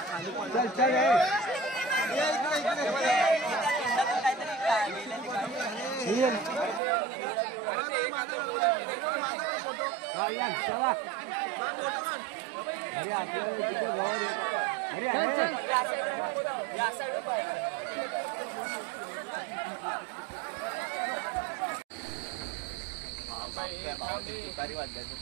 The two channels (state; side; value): drops out; left; at 6.8 s